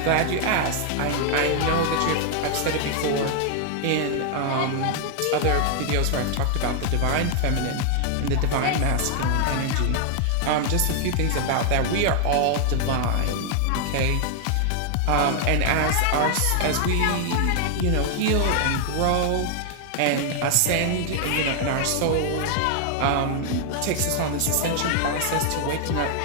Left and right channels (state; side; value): different; both; correlation 0.00